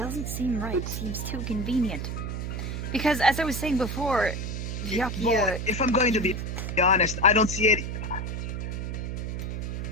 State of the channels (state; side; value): noise; right; hum, 4 dB below the sound